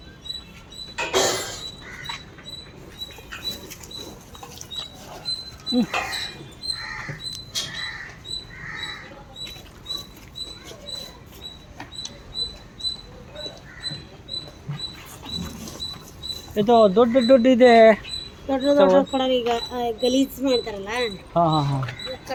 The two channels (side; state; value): both; identical; correlation 1.00